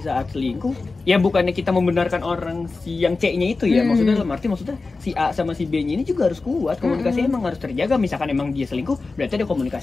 saat selingkuh, ya bukannya kita membenarkan orang si yang C-nya itu ya. Maksudnya dalam arti maksudnya si A sama si B-nya ini juga harus kuat. Komunikasi emang harus terjaga. Misalkan emang dia selingkuh, berarti ada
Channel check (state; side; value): quieter; right; 3.8 dB